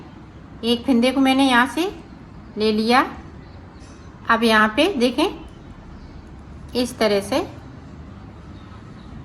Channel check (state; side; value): identical; both; correlation 1.00